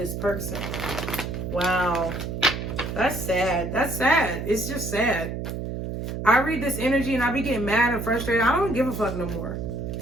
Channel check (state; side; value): noise; right; hum, 5 dB below the sound